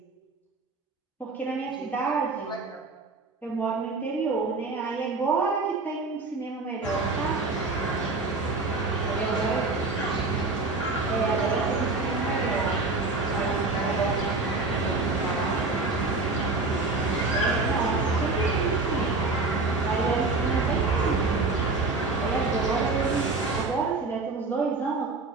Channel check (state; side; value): quieter; left; 3.6 dB